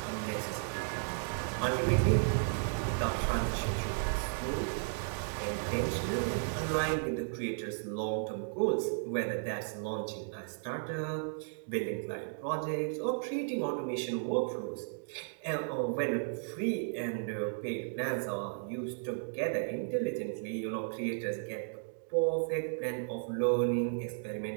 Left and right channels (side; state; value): left; silent; digital silence